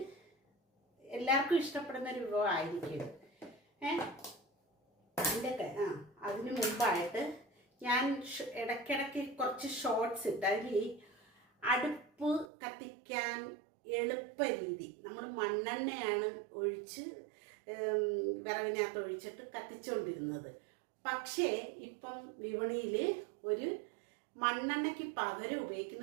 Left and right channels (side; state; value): left; drops out; at 12.5 s